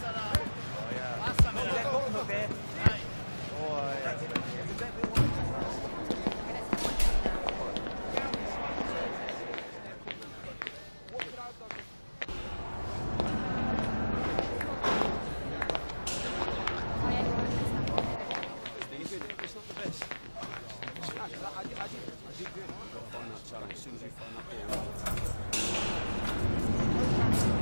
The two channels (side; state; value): both; inverted; correlation -1.00